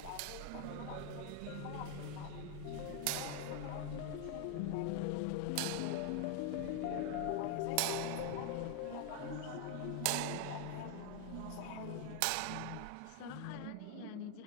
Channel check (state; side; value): different; both; correlation 0.01